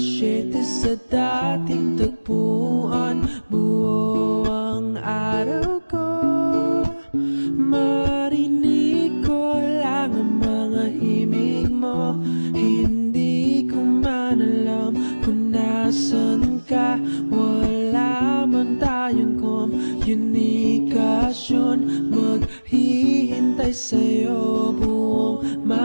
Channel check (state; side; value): inverted; both; correlation -1.00